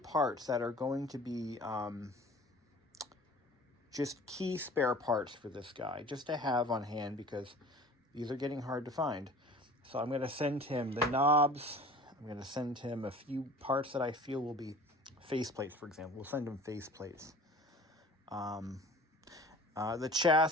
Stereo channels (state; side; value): normal; both; correlation 0.44